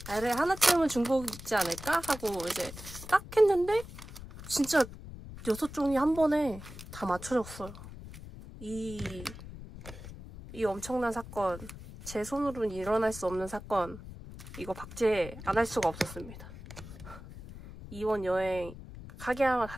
그래 하나쯤은 중복 있지 않을까? 하고 이제 딱 했는데 진짜 6종이 한 번에 다 맞춰졌어요. 이 엄청난 사건, 제 손으로는 일어날 수 없는 사건, 이거 박제 안 할 수가 없었습니다. 이번 여행 카게야마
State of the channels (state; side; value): noise; left; rumble, 13 dB below the sound